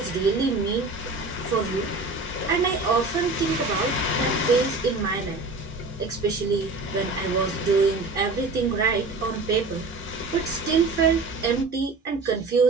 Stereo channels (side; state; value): left; quieter; 3.5 dB